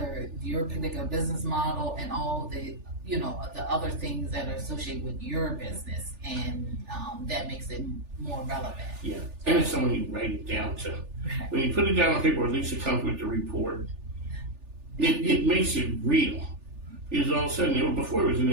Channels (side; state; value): left; late; 3.4 ms